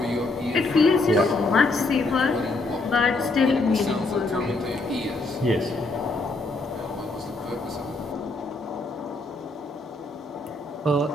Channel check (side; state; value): right; quieter; 3.1 dB